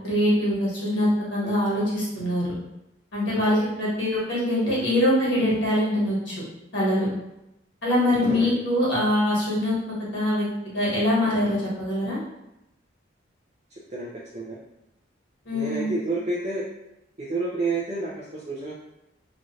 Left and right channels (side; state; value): both; normal; correlation 0.53